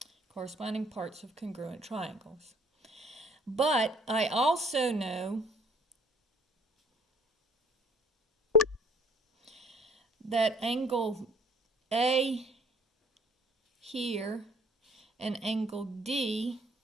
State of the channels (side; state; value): both; normal; correlation 0.56